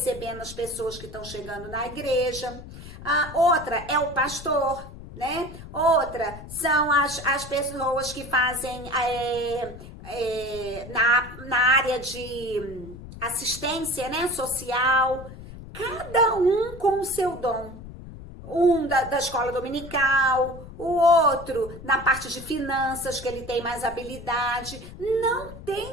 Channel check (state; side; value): noise; left; rumble, 14 dB below the sound